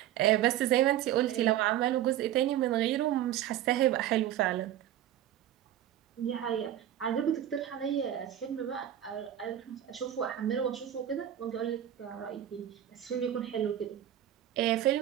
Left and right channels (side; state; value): left; quieter; 11.7 dB